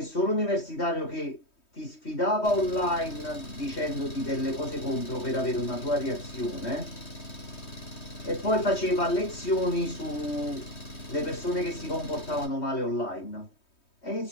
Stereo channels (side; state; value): right; late; 3.2 ms